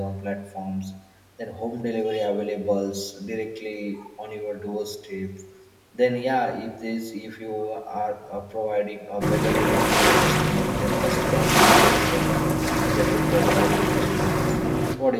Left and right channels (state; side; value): identical; both; correlation 1.00